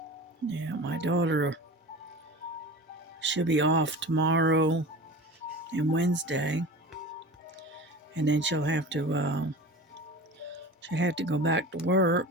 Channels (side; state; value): both; normal; correlation 0.35